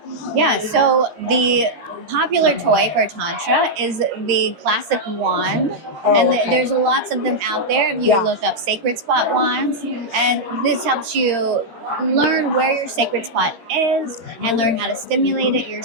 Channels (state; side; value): late; left; 13 ms